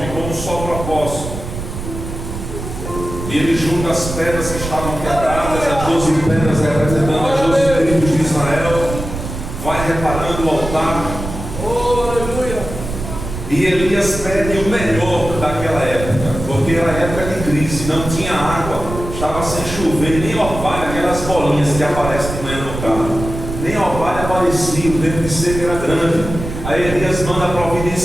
como um só propósito. E ele junta as pedras que estavam quebradas, as 12 pedras representando as 12 tribos de Israel. Vai reparando o altar. Oh, aleluia. E Elias pede o melhor daquela época, porque era época de crise, não tinha água, estava sem chover, nem orvalho, aquelas bolinhas que aparecem de manhã no carro, nem orvalho aparecia, o tempo de seca era grande. Aí Elias manda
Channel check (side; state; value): right; noise; rumble, 8 dB below the sound